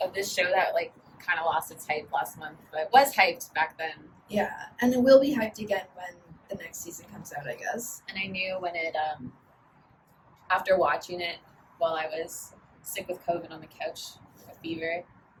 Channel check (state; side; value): identical; both; correlation 1.00